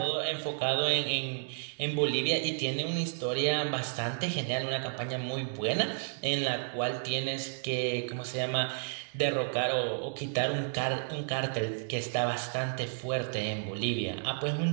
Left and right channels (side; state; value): left; silent; digital silence